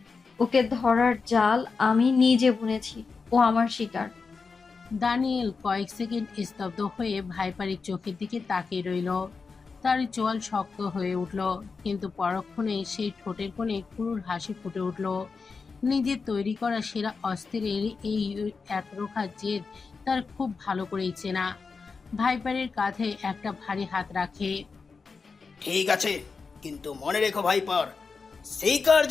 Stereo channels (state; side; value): quieter; right; 4.8 dB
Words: ওকে ধরার জাল আমি নিজে বুনেছি, ও আমার শিকার। দানিয়েল কয়েক সেকেন্ড স্তব্ধ হয়ে ভাইপারের চোখের দিকে তাকিয়ে রইল। তার চোয়াল শক্ত হয়ে উঠল, কিন্তু পরক্ষণে সেই ঠোঁটের কোণে ক্রূর হাসি ফুটে উঠল। নিজের তৈরি করা সেরা অস্ত্রের এই একরোখা জেদ তার খুব ভালো করেই চেনা। ভাইপারের কাঁধে একটা ভারী হাত রাখে। ঠিক আছে, কিন্তু মনে রেখো ভাইপার, শিকার